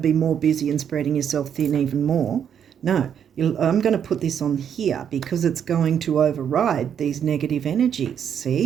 more busy and spreading yourself thin even more. No, I'm going to put this on here because it's going to override these negative energies,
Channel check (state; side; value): quieter; left; 8.4 dB